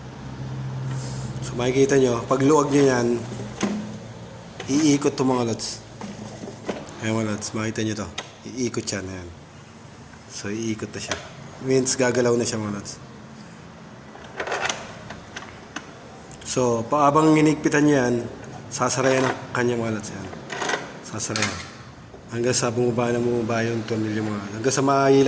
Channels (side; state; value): both; identical; correlation 1.00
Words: So makikita nyo, pag luwag nyo yan, iikot to mga lods. Ayan mga lods, makita nyo to. Iikot yan, ayan. So iikot na siya. Means gagalaw na siya mga lods. So paabang inigpitan nyo yan, sasarayan ang kanya mga lods yan. Sasarayan. Hanggang sa bumaba na bumaba yung tornilyo mga lods. Hanggang sa